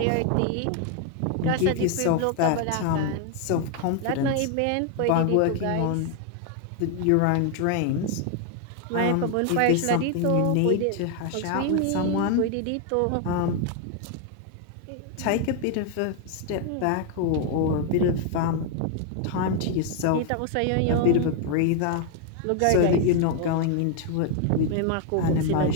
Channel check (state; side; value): different; both; correlation 0.01